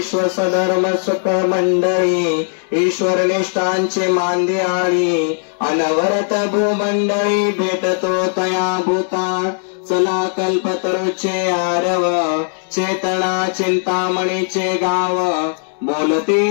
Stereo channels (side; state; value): right; silent; digital silence